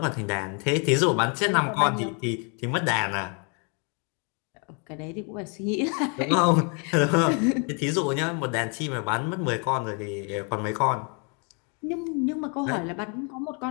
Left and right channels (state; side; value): quieter; right; 36.5 dB